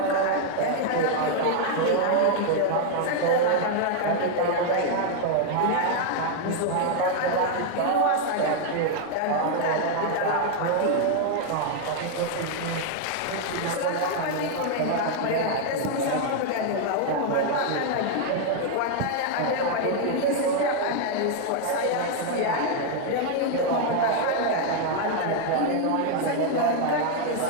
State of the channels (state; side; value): different; both; correlation 0.00